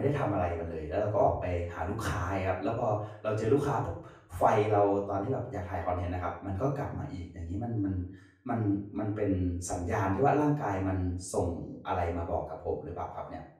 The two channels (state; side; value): identical; both; correlation 1.00